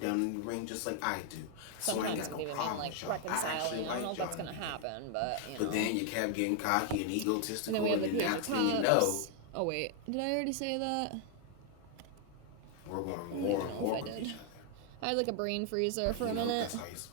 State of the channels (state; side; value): different; both; correlation 0.00